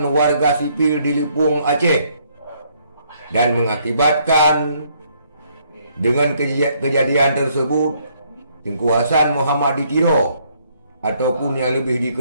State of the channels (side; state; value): both; inverted; correlation -0.68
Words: warga sipil di Lepung Aceh, dan mengakibatkan dengan kejadian tersebut Tengku Hasan Muhammad Tiro, ataupun yang lebih